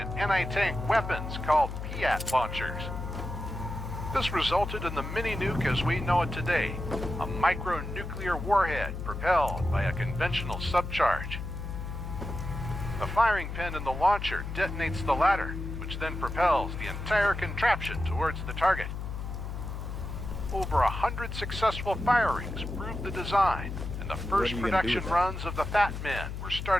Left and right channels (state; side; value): noise; left; hum, 6 dB below the sound